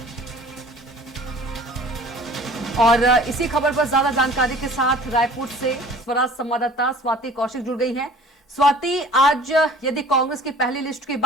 और इसी खबर पर ज्यादा जानकारी के साथ रायपुर से स्वराज संवाददाता स्वाति कौशिक जुड़ गई हैं। स्वाति, आज यदि कांग्रेस की पहली लिस्ट की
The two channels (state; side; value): normal; both; correlation 0.47